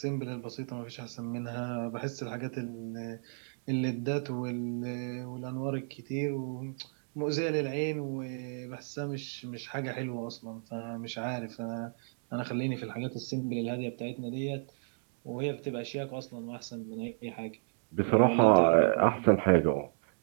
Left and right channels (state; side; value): silent; left; digital silence